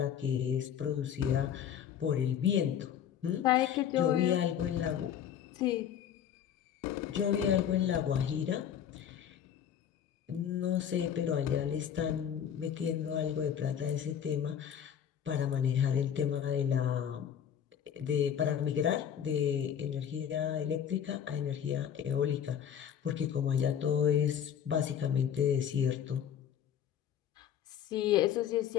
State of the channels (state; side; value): quieter; right; 9.1 dB